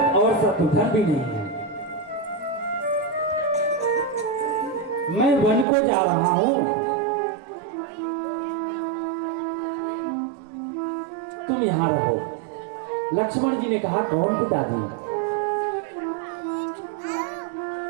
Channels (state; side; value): drops out; left; at 5.7 s